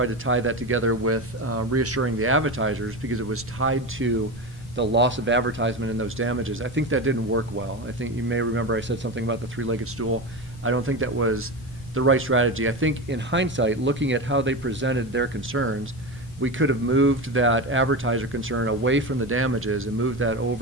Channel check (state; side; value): normal; both; correlation 0.21